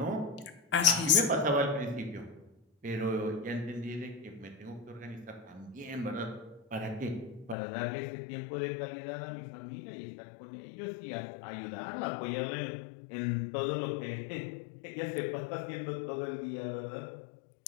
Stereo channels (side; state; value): right; drops out; at 7.6 s